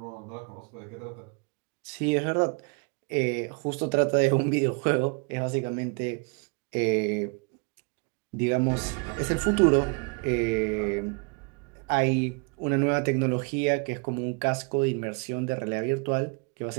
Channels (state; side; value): quieter; left; 33.7 dB